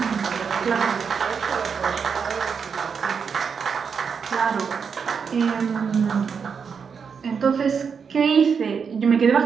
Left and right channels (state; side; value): quieter; left; 6.2 dB